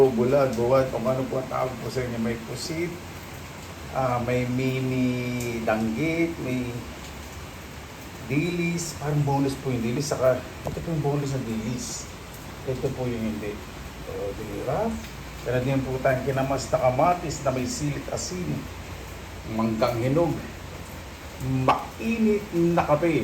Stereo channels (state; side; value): identical; both; correlation 1.00